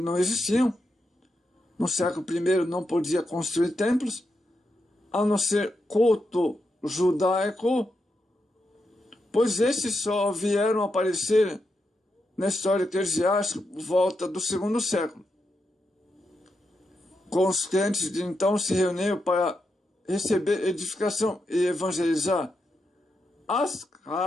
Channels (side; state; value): both; normal; correlation 0.85